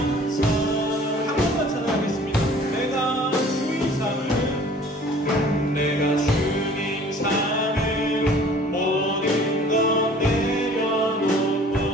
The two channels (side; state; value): both; normal; correlation 0.51